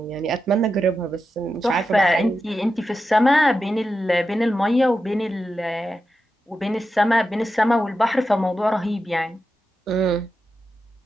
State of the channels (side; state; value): both; normal; correlation 0.89